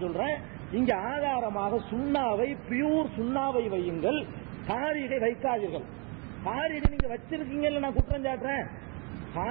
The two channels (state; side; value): quieter; left; 32.3 dB